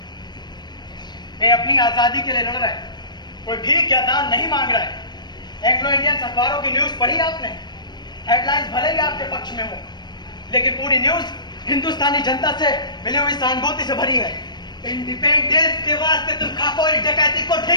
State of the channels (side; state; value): right; late; 0.21 ms